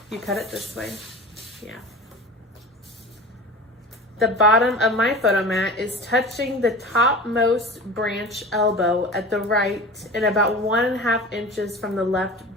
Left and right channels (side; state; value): both; normal; correlation 0.34